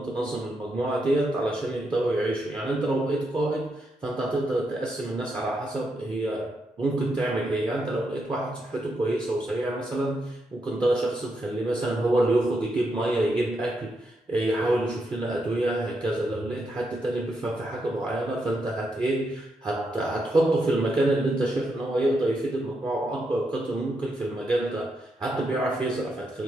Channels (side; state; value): both; normal; correlation 0.81